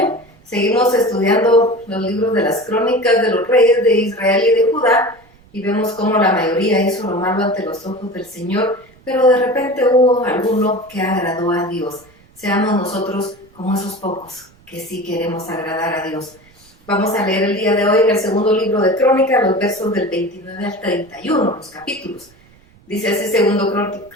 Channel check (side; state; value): right; noise; rumble, 29 dB below the sound